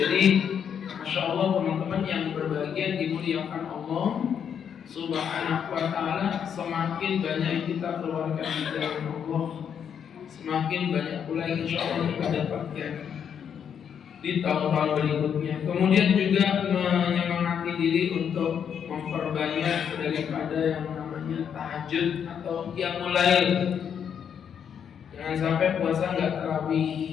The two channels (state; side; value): quieter; right; 8.0 dB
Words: Masya Allah teman-teman yang berbahagia dimuliakan Allah Subhanahu wa ta'ala, semakin banyak yang kita keluarkan di jalan Allah, semakin banyak pula insya Allah kita dapatkan di tahun-tahun berikutnya. Kemudian juga menyemangati diri untuk memperbanyak daripada yang namanya tahajud atau qiyamul lail. Jangan sampai puasa nggak